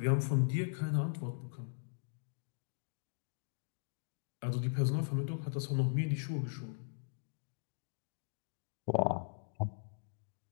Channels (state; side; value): silent; right; digital silence